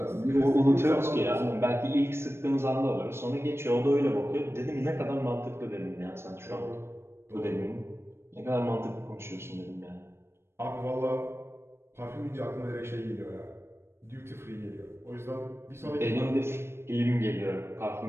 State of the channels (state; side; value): late; left; 0.12 ms